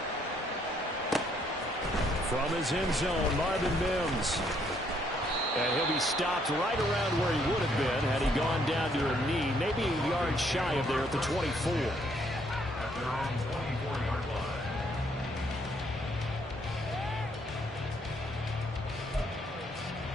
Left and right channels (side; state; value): both; normal; correlation 0.69